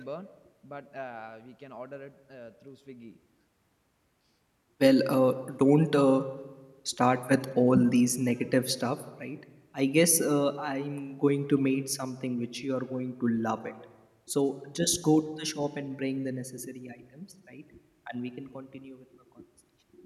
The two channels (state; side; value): identical; both; correlation 1.00